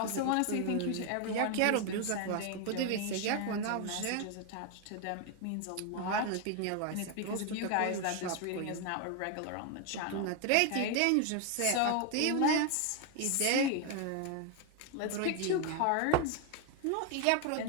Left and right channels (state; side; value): different; both; correlation 0.01